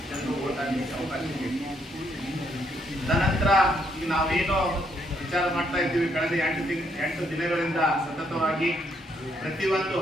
ಜನರು ಓಟ್ ಹಾಕಲಿಕ್ಕೆ ಅವಕಾಶ ಇದೆ. ತದನಂತರ ಈಗ ನಾವೇನೋ ವಿಚಾರ ಮಾಡ್ತಾ ಇದ್ದೀವಿ, ಕಳೆದ 8 ದಿನಗಳಿಂದ ಸತತವಾಗಿ ಪ್ರತಿಯೊಂದು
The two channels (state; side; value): normal; both; correlation 0.73